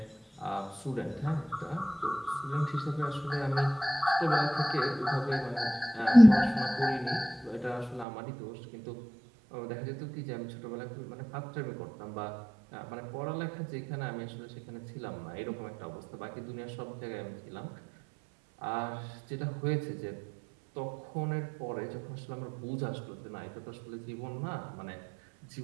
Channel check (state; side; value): drops out; left; at 8.1 s